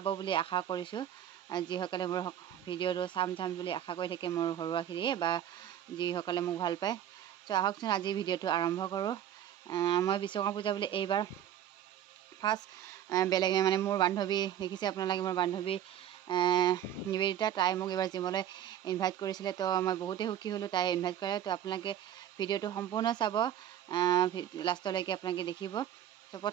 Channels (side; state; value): left; quieter; 10.6 dB